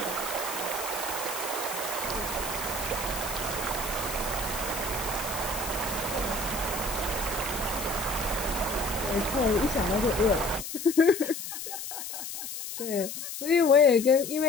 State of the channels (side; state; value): left; noise; hiss, 7 dB below the sound